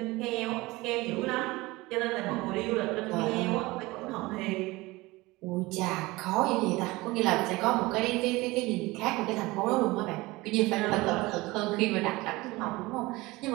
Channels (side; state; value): left; quieter; 21.2 dB